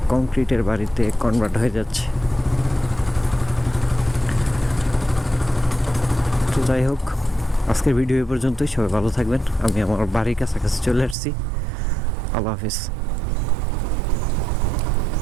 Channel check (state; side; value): drops out; left; at 11.2 s